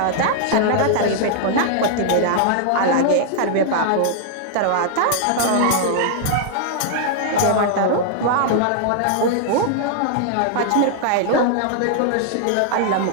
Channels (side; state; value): both; different; correlation -0.01